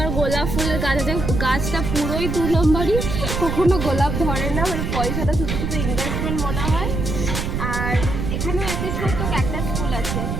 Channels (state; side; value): noise; right; rumble, 2 dB below the sound